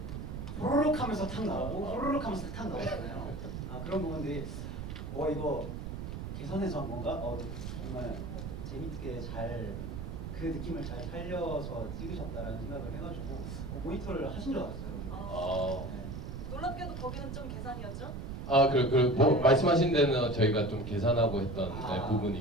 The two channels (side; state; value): right; noise; rumble, 6 dB below the sound